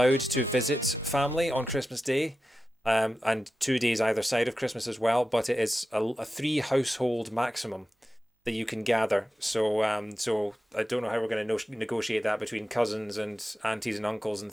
to visit family on Christmas Day, and 2 days either side of Christmas as well. But it is a three household maximum that you can gather. So I don't know how we're going to negotiate that between cousins and aunties and uncles and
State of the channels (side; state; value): both; normal; correlation 0.93